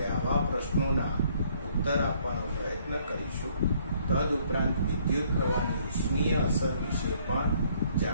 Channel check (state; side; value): inverted; both; correlation -0.64